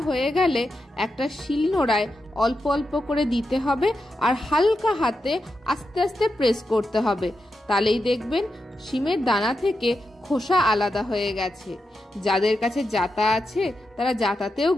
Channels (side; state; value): both; normal; correlation 0.87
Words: হয়ে গেলে একটা শিলনোড়ায় অল্প অল্প করে দিতে হবে, আর হালকা হাতে আস্তে আস্তে প্রেস করতে হবে। তাহলেই দেখবেন শিমের দানা থেকে খোসা আলাদা হয়ে গেছে। যাদের কাছে জাতা আছে তারা জাতাতেও